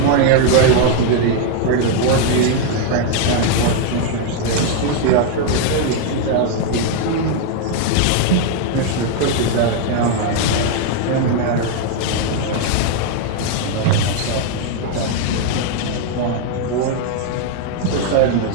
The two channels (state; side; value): different; both; correlation 0.00